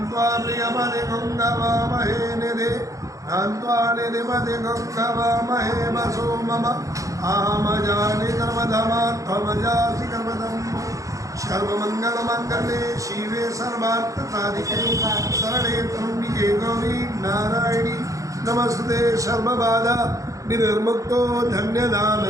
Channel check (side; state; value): left; late; 0.16 ms